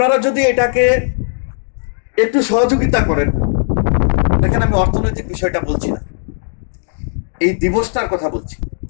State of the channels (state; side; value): silent; right; digital silence